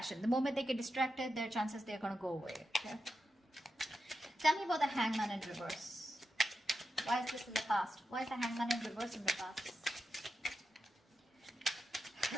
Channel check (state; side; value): normal; both; correlation 0.88